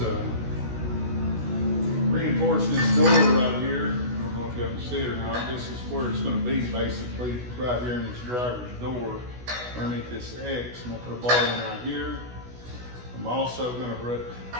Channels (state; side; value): late; left; 16 ms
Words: reinforcing this door right here. I don't know if you can see it or not. This is where it's going to be, basically, right here in this driver's door, underneath this X. I'm going to put a bar in right here. I'm also going to